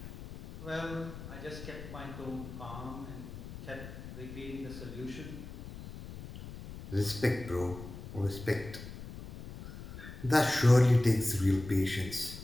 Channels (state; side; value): noise; left; rumble, 12 dB below the sound